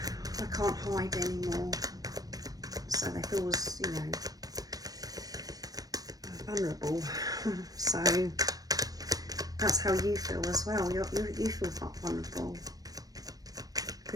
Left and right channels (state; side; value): late; left; 0.18 ms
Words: I can't hide anymore. So they feel, vulnerable. So that's how you feel as well. You feel vulnerable,